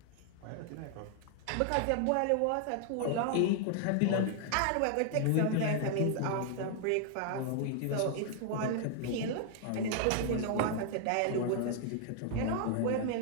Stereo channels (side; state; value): both; different; correlation 0.00